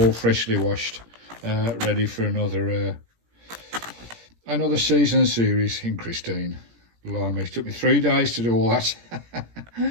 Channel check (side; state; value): left; late; 17 ms